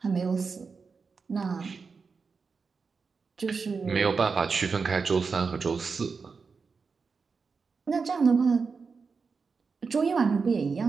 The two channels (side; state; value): left; quieter; 5.0 dB